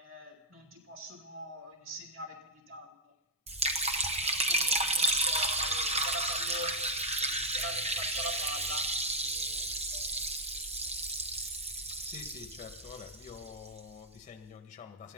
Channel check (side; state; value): both; normal; correlation -0.02